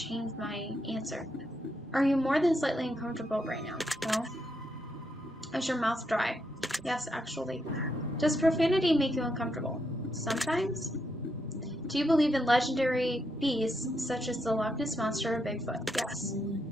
my answer. Are you more than slightly uncomfortable right now? No. Is your mouth dry? Yes, actually. Does profanity make you uncomfortable? Sometimes. Do you believe in legendary beasts such as the Loch Ness Monster or Bigfoot? Yes.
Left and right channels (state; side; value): normal; both; correlation 0.80